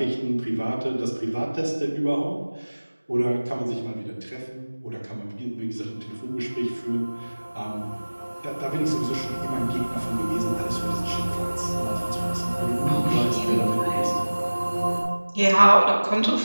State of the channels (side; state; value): both; inverted; correlation -1.00